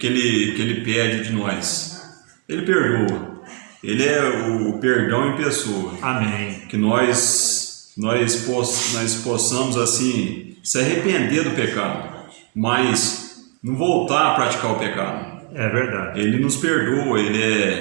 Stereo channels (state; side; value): quieter; left; 31.3 dB